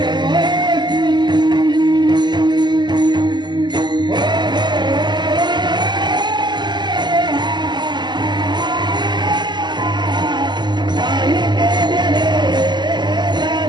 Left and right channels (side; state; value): left; late; 0.21 ms